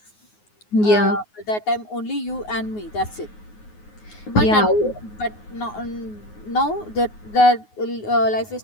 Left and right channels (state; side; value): late; right; 9.5 ms